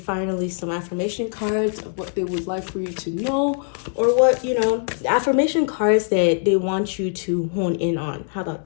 some affirmation cards of what they would like for you to know, or what, affirmation cards that they want you to hone in on. How about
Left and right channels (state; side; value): silent; right; 58 dB below the other